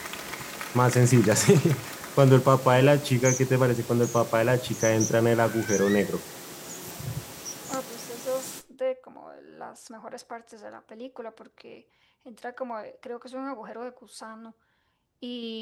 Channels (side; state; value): both; identical; correlation 1.00